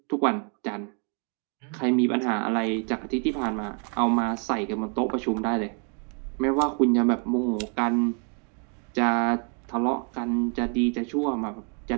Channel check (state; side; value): quieter; left; 38.8 dB